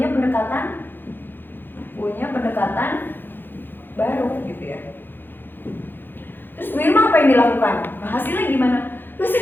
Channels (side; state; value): right; late; 0.097 ms